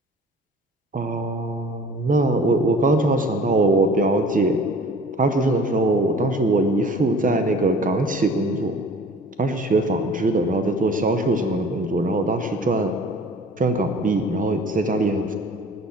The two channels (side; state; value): both; normal; correlation 0.47